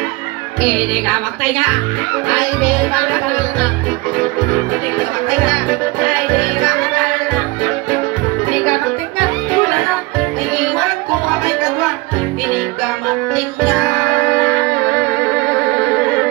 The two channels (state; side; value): quieter; left; 22.3 dB